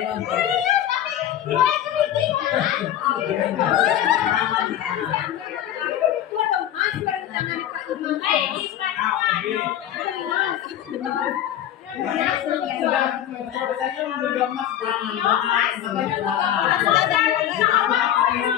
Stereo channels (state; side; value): quieter; right; 11.4 dB